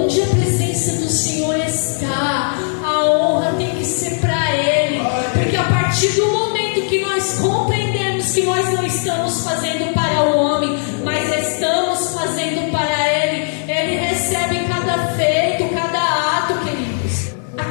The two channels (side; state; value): right; silent; 68 dB below the other